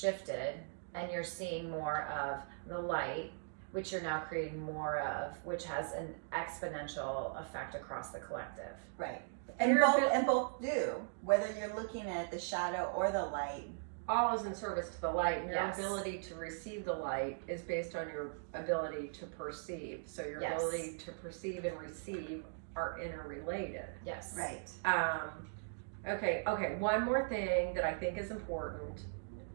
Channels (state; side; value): silent; left; digital silence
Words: and you're seeing more of the light, which you're now creating more of, which has an exponential effect across the collective. Right. And both do. Whether you're looking at the shadow or the light. All is in service to the light, and your Yes. ability to receive the light is based on your ability to perceive. So your Yes. ability to perceive and receive are interrelated. Yes. Right. Okay, one more thing that I think is important